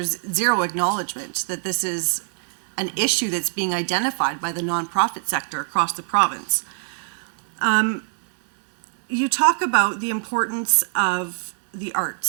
zero acknowledgement that this is an issue that's being identified by the nonprofit sector across the province. You talk about the importance of the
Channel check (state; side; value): silent; left; 63 dB below the other